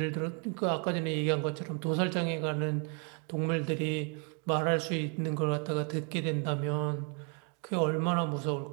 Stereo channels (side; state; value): left; quieter; 38.0 dB